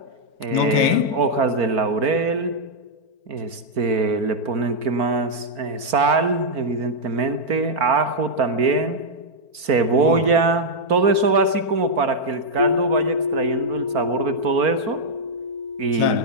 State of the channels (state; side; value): late; left; 4.4 ms